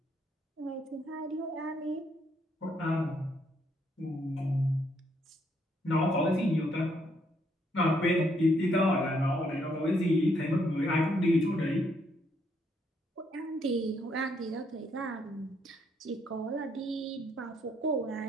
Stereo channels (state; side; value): normal; both; correlation 0.72